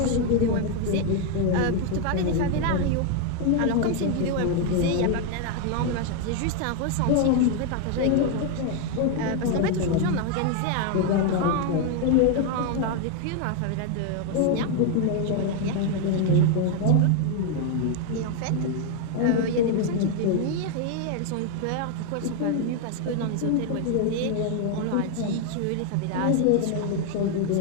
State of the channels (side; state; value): both; different; correlation 0.01